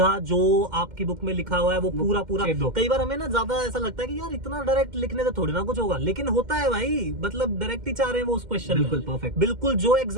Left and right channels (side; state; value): left; late; 2.1 ms